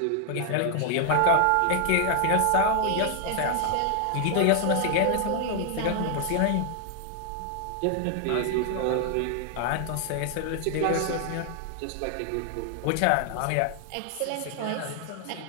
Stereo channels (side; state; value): both; different; correlation 0.00